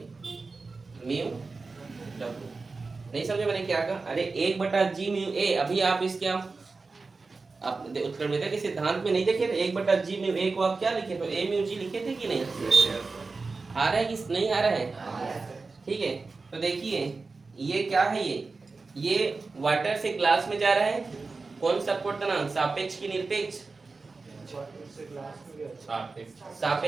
म्यू W। नहीं समझे मैंने क्या कहा? अरे 1/g/a, अभी आप इसके आप उत्क्रमणियता के सिद्धांत में नहीं देखे थे 1/g/a को आप क्या लिखे तो a/g लिखे थे कि नहीं? आ रहा है कि नहीं आ रहा है? ठीक है, तो देखिए ये क्या है, ये वाटर से ग्लास में जा रहा है, कौन सा अपवर्तनांक? सापेक्ष की निरपेक्ष?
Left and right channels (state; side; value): quieter; left; 4.0 dB